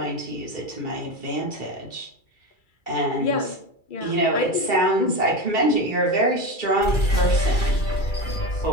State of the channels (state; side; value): late; right; 2.3 ms